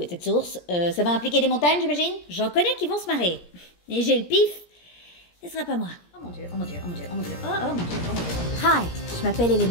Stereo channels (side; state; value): right; late; 17 ms